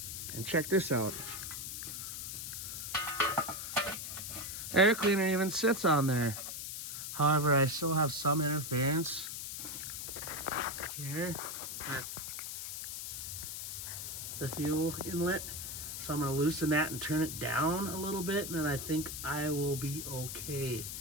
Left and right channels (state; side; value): noise; left; hiss, 6 dB below the sound